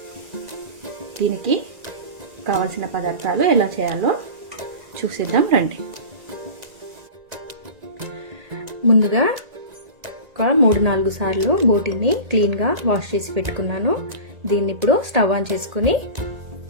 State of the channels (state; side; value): late; left; 1.9 ms